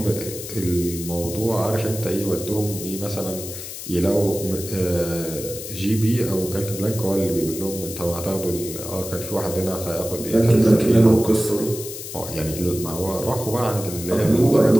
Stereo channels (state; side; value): noise; left; hiss, 10 dB below the sound